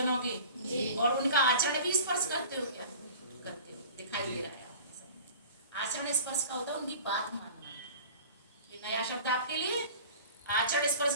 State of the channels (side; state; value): both; inverted; correlation -0.41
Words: के जी, और उनका आचरण भी स्पर्श करते हो क्या? करते हो, दिखाई दे रहा है आपके सामने। आचरण स्पर्श का होता है उनकी बात मानना, ये नया शब्द आपके लिए। आचरण स्पर्श